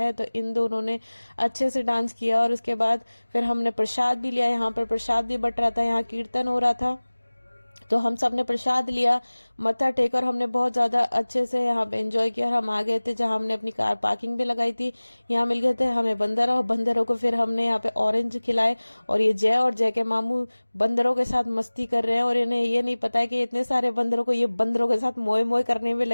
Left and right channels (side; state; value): both; inverted; correlation -1.00